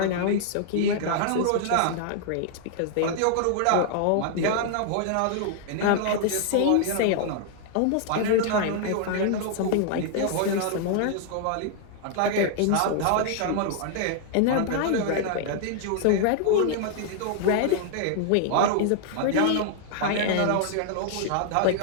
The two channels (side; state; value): both; different; correlation -0.01